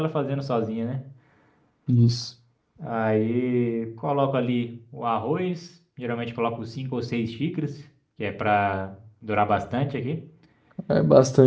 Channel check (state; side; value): identical; both; correlation 1.00